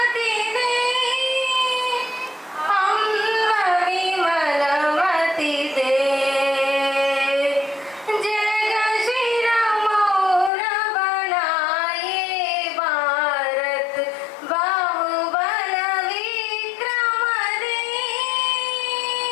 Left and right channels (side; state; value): right; drops out; at 10.5 s